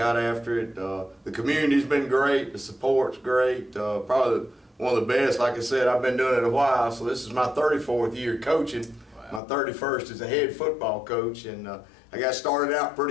after it. The community's been great. The support's great. Probably one of the best. Like I said, I've been doing it a while, so this is my 34th year coaching. Wow. My 31st as a head football coach, and I got started out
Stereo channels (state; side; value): drops out; right; at 9.4 s